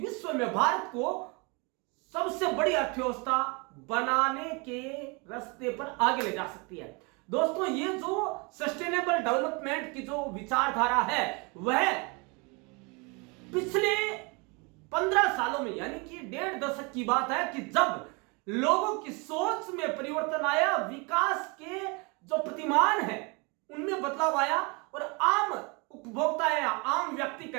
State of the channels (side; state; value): left; quieter; 30.1 dB